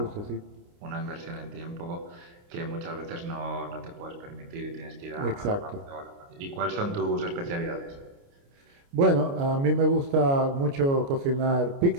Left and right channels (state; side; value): late; left; 29 ms